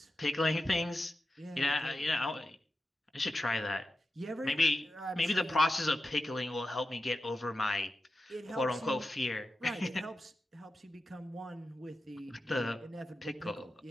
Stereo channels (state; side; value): normal; both; correlation 0.92